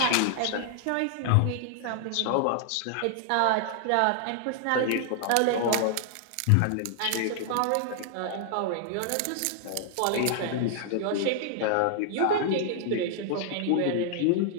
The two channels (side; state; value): both; different; correlation 0.00